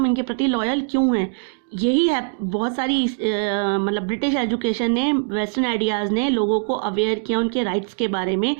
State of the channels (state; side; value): silent; left; digital silence